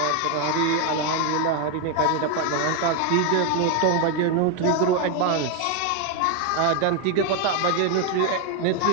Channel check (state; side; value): different; both; correlation 0.01